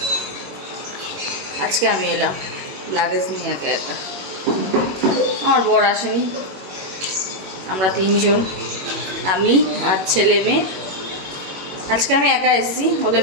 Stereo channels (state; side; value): late; left; 21 ms